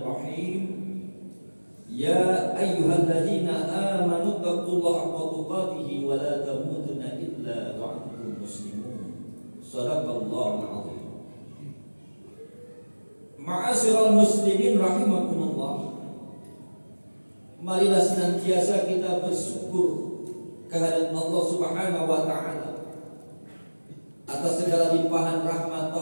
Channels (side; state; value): both; inverted; correlation -1.00